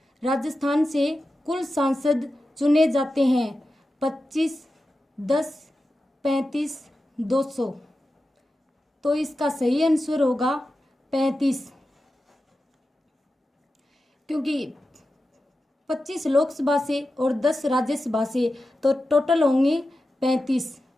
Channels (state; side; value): normal; both; correlation 0.92